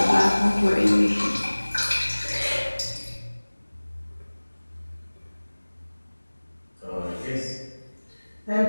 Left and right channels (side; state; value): both; inverted; correlation -1.00